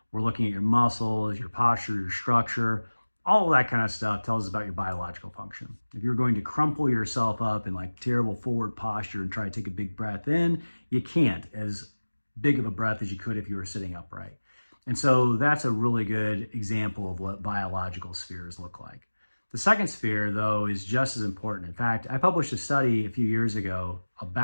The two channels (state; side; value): inverted; both; correlation -1.00